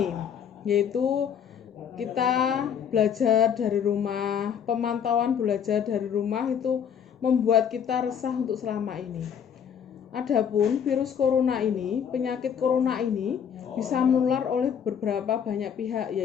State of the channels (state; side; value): quieter; right; 8.0 dB